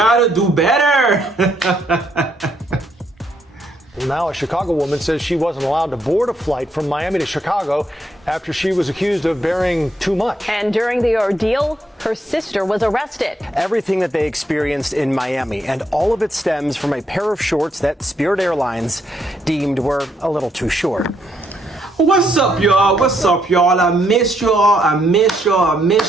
do better. Now a Chicago woman says she wasn't allowed to board a flight from Miami to Chicago after she was accused of bearing too much. And during the ordeal, her sister was arrested. Everything that they experienced in Miami, and all of it stems from a pair of shorts that Spirit Airlines deemed were a little too short. What's up, y'all? What's up, y'all? I miss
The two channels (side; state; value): both; normal; correlation 0.74